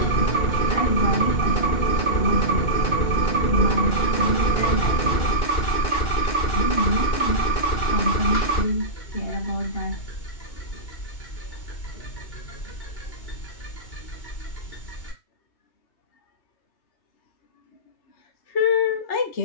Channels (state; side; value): late; right; 2.8 ms